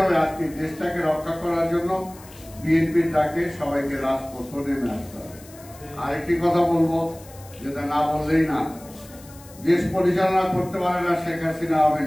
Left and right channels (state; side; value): noise; left; hiss, 21 dB below the sound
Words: আজকে দেশটাকে রক্ষা করার জন্য বিএনপির ডাকে সবাইকে রাজপথে নেমে আসতে হবে। আরেকটি কথা বলবো, যেটা না বললেই না, দেশ পরিচালনা করতে পারে না শেখ হাসিনা, আওয়ামী